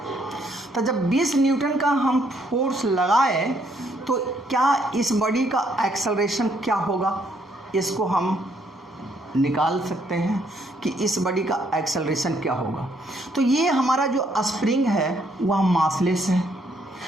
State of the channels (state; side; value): normal; both; correlation 0.70